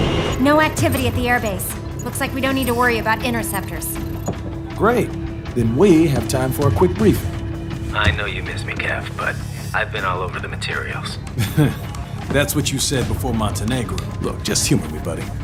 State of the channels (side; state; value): both; identical; correlation 1.00